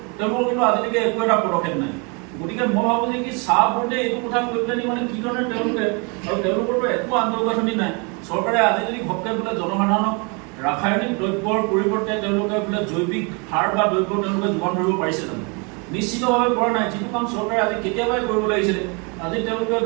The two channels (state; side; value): quieter; left; 32.6 dB